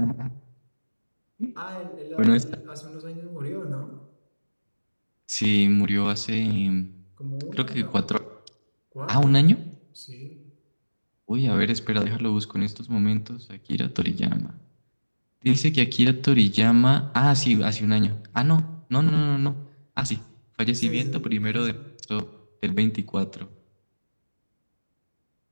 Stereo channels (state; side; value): inverted; both; correlation -1.00